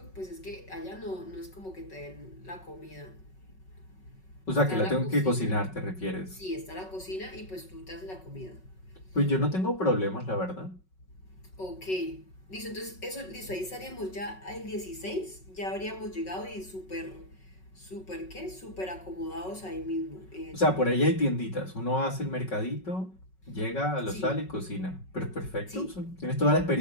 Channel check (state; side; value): late; right; 5.4 ms